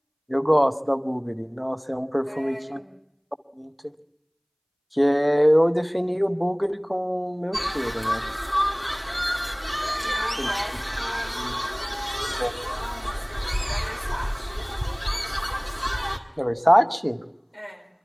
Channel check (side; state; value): both; identical; correlation 1.00